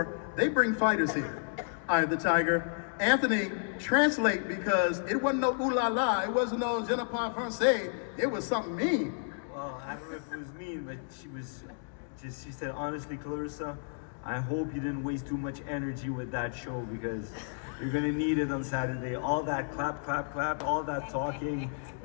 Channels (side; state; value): right; silent; digital silence